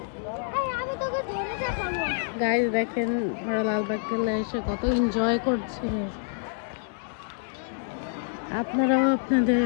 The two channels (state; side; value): silent; right; digital silence